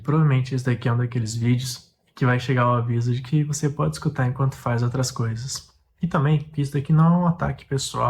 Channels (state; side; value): identical; both; correlation 1.00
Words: esse daqui é um daqueles vídeos que vai chegar o aviso de que você pode escutar enquanto faz outras coisas. E também que isso daqui não é um ataque